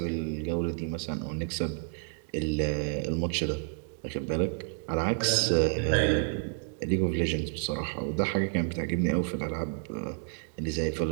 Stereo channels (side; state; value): left; silent; digital silence